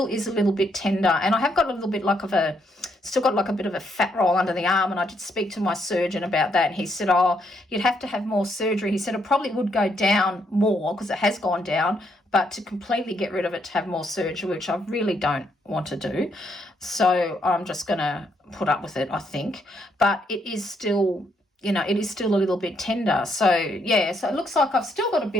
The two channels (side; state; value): both; normal; correlation 0.75